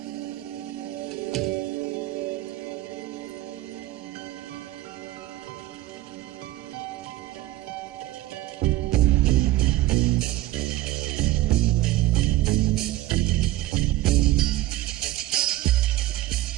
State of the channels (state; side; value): quieter; left; 16.0 dB